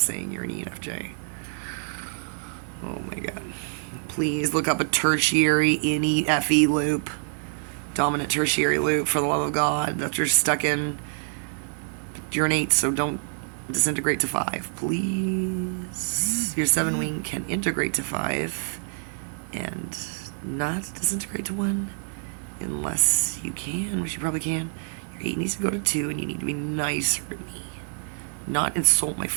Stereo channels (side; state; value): left; silent; 61 dB below the other